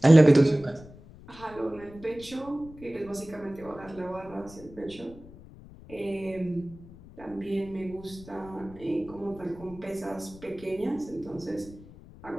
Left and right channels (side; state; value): left; noise; rumble, 19 dB below the sound